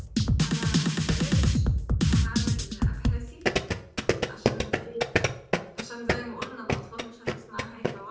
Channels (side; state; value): both; identical; correlation 1.00